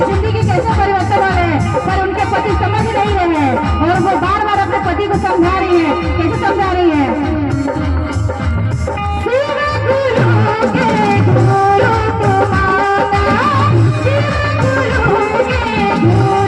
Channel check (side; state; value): both; identical; correlation 1.00